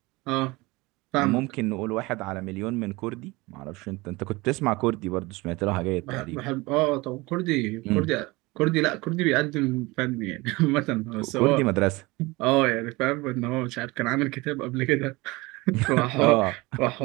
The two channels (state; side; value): quieter; left; 22.8 dB